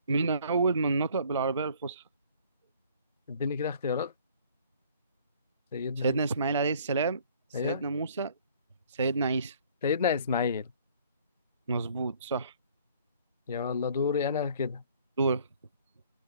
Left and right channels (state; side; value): inverted; both; correlation -0.56